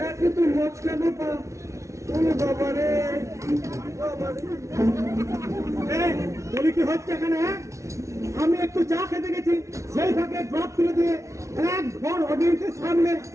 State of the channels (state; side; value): late; left; 0.14 ms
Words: একে তো মচকানো পা। বাবা রে, বলি কি হচ্ছে এখানে? আমি একটু চা খেতে গেছি, সেই ফাঁকে ড্রপ তুলে দিয়ে এক ঘর অডিয়েন্সের সামনে